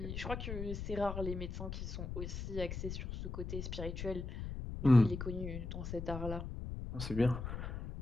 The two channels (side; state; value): left; noise; rumble, 6 dB below the sound